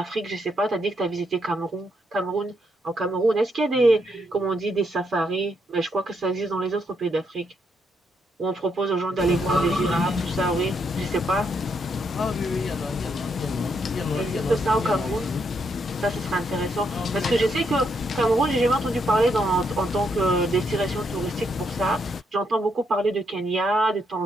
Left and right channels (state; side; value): normal; both; correlation 0.77